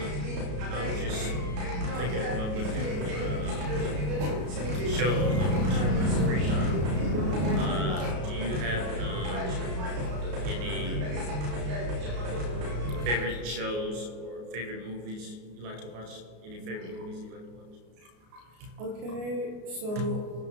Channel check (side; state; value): left; late; 33 ms